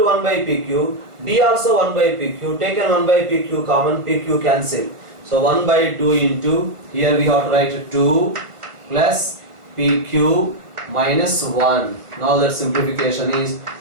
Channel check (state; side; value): late; left; 1.4 ms